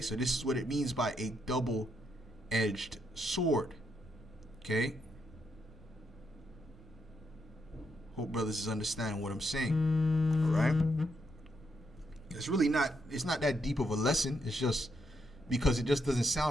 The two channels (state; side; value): normal; both; correlation 0.79